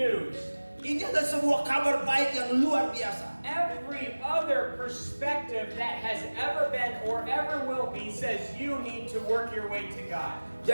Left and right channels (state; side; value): inverted; both; correlation -1.00